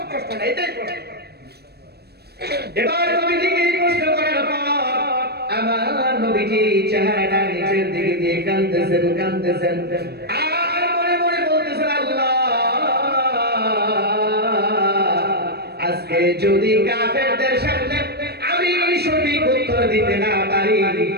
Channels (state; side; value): late; left; 0.47 ms